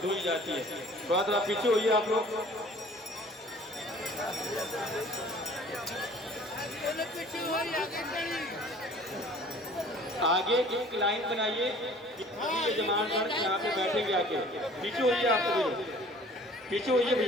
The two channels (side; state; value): both; normal; correlation 0.50